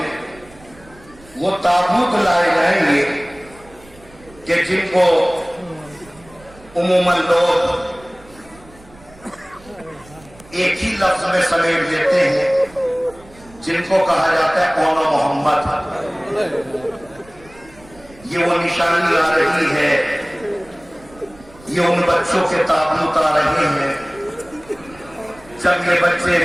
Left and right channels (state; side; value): noise; right; rumble, 24 dB below the sound